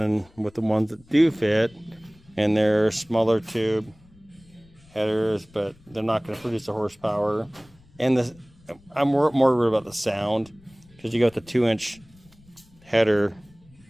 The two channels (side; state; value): left; noise; rumble, 27 dB below the sound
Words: with the ones that do fit, and they're smaller tube headers, but they're not going to produce the horsepower, and I'm more worried about the sound. Because you got the 2-inch header